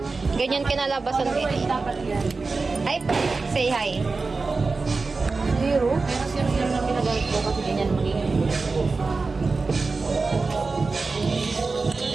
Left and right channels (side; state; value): left; quieter; 4.0 dB